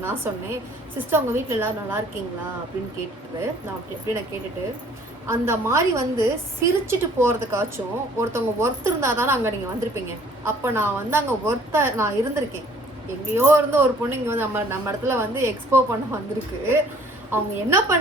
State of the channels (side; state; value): both; normal; correlation 0.56